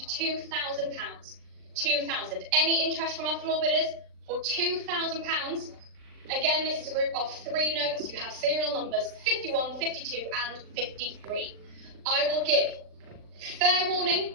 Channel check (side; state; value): left; late; 39 ms